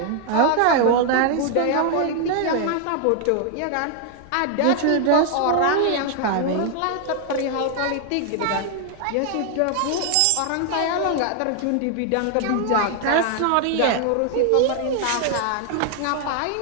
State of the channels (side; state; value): both; different; correlation 0.00